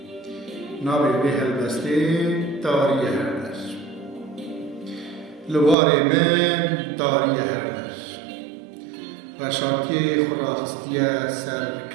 نابی به هلبستی تاری هردر لوار من تاری هردر رشاکی خوراخستی سر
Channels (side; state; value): left; drops out; at 5.8 s